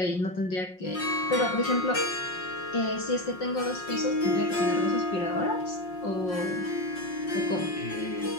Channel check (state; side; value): late; right; 5.6 ms